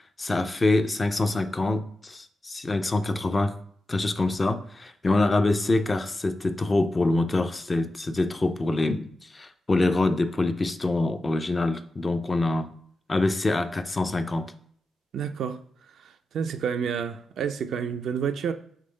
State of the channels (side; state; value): both; normal; correlation 0.90